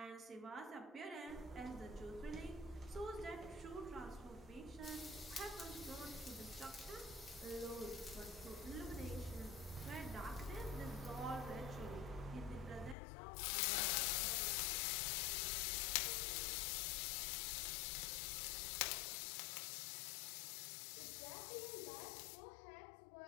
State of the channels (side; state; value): right; drops out; at 13.0 s